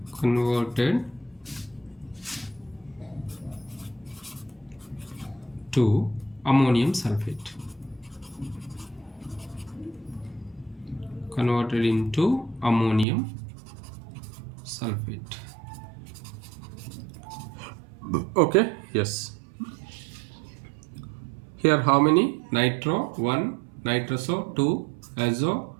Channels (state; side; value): drops out; left; at 13.1 s